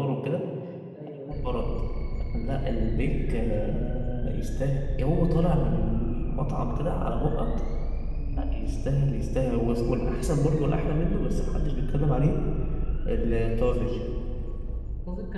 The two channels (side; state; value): both; identical; correlation 1.00